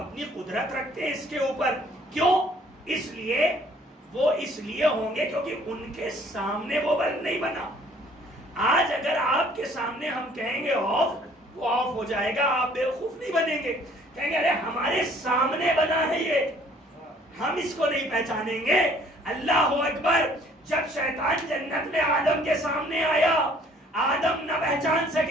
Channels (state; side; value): normal; both; correlation 0.58